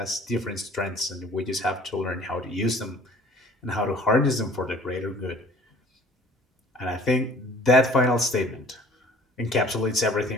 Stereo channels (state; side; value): normal; both; correlation 0.51